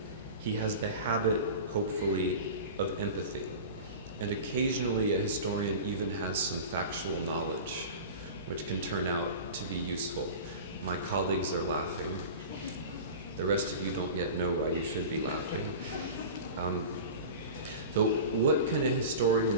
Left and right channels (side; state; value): both; inverted; correlation -0.33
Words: He has the habit, hopefully, of empathy. And occasionally a historian even has some factual knowledge, which can turn out to be useful. My colleagues are laughing. The rest of you don't yet know why you should be laughing. So what can a